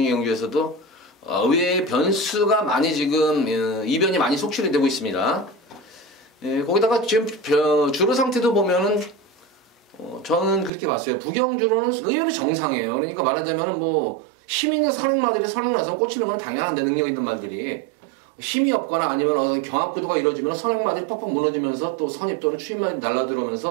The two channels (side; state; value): left; drops out; at 10.7 s